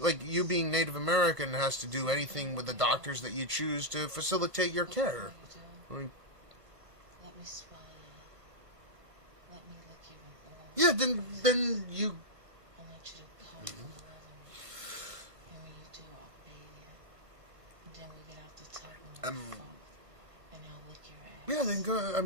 being Native American has to do anything with the doctors that you choose to facilitate your care. Let me swallow you. Let me lick you with all. Yeah, then you. I want you to come and love me. And when you do, I'll bathe you. And then we get out the tub and we'll fuck. And I'll lick your ass. Yeah, then go. I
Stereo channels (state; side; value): late; left; 1.5 ms